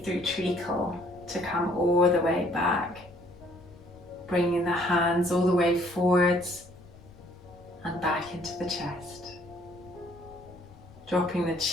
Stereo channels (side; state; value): left; noise; rumble, 23 dB below the sound